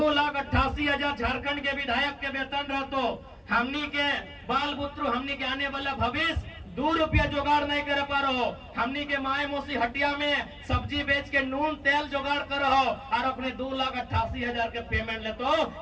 झारखंड के विधायक के वेतन रहते। हमनी के बाल पुत्र, हमनी के आने वाला भविष्य 2 रुपया जुगाड़ नहीं कर पा रहे हो। हमनी के माए मौसी हटिया में सब्जी बेच के नून तेल जुगाड़ कर रहो और अपने 2,88,000 के पेमेंट लेते हो।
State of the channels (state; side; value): identical; both; correlation 1.00